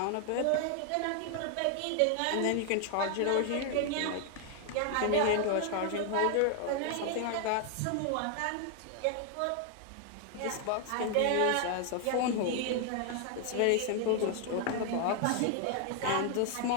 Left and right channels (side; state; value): both; different; correlation 0.00